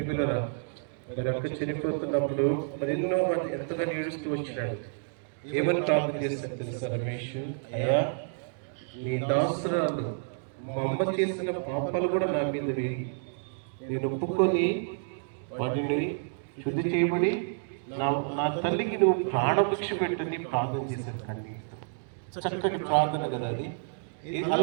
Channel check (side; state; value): left; silent; digital silence